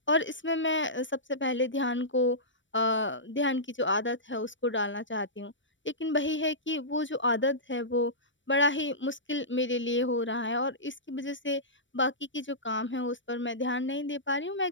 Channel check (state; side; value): late; right; 0.55 ms